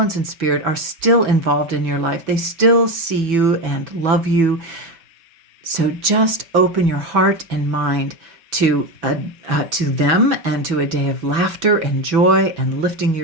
in spirit are still involved in your life. They still see you and love you. So just open your heart and mind to them and to a day of laughter and joy and lifting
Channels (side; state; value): left; late; 6.1 ms